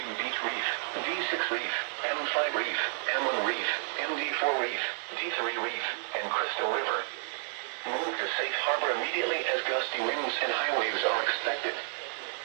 Beach Reef, D6 Reef, M5 Reef, M1 Reef, MD4 Reef, D3 Reef, and Crystal River. Move to safe harbor immediately as gusty winds and high waves are expected.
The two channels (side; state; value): left; silent; 57 dB below the other